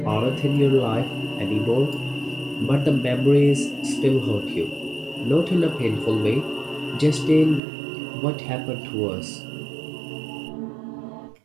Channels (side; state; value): left; drops out; at 7.6 s